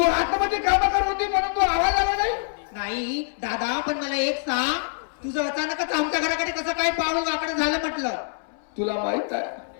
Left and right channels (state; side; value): silent; right; 62 dB below the other